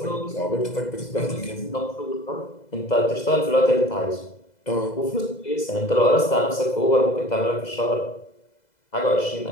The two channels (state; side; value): late; right; 2.0 ms